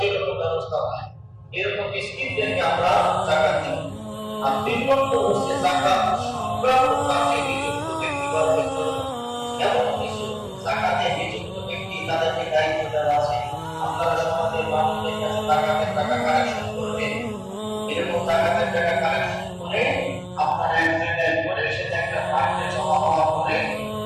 ব্যবস্থা হয়। এরকম মিসকিনদেরকে আমরা জাকাত দিই। আর ৩ নম্বর হচ্ছে জাকাত সংক্রান্ত কাজে নিযুক্ত ব্যক্তিবর্গের জন্য। এমন কিছু জাকাতে নিযুক্ত ব্যক্তি তাদেরকে দায়িত্ব দেওয়া আছে, আপনারা সমাজের মানুষদের কাছে জাকাতের টাকা কালেকশন করবেন। এরকম জাকাতের টাকা কালেকশন করে আপনারা এক জায়গায় করে সেটা একটা ফান্ডে জমা হওয়ার পরে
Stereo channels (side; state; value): both; identical; correlation 1.00